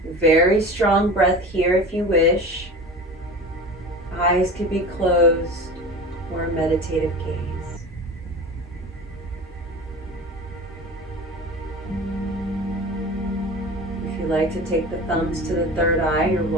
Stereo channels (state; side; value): normal; both; correlation 0.34